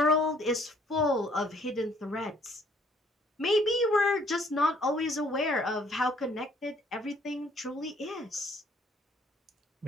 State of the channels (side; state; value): both; normal; correlation 0.62